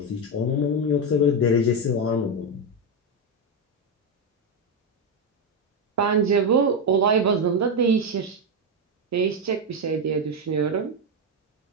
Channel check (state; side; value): normal; both; correlation 0.07